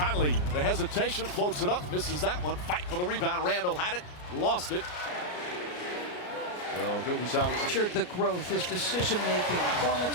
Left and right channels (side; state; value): right; late; 33 ms